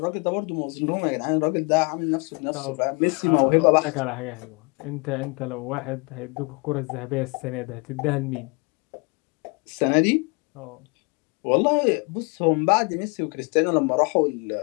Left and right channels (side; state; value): right; quieter; 30.8 dB